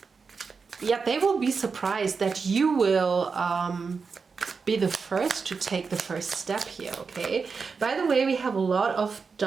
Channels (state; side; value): quieter; left; 5.1 dB